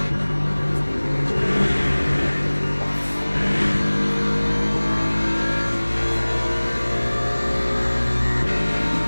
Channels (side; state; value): both; inverted; correlation -1.00